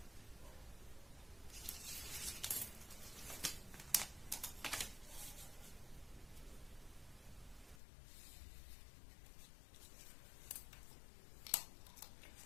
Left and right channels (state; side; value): drops out; right; at 7.8 s